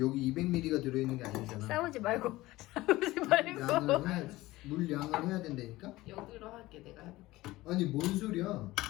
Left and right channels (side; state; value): right; quieter; 18.4 dB